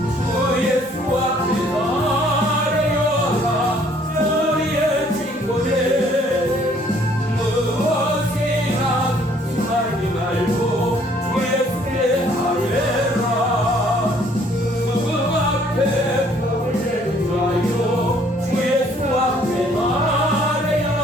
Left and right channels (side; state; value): both; normal; correlation 0.61